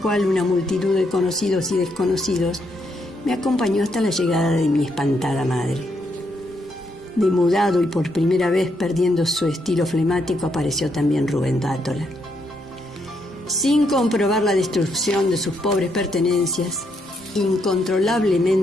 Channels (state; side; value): normal; both; correlation 0.77